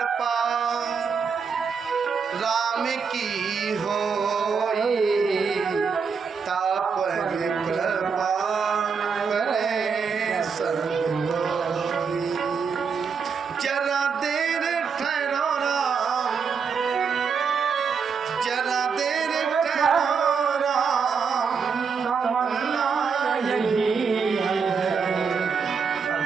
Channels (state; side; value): quieter; left; 5.8 dB